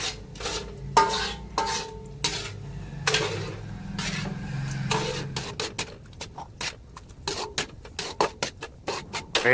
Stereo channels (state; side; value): identical; both; correlation 1.00